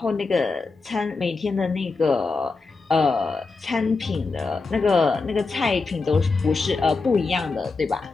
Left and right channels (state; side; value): quieter; right; 4.1 dB